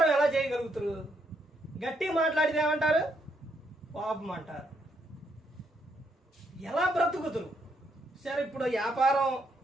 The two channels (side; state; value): both; normal; correlation 0.75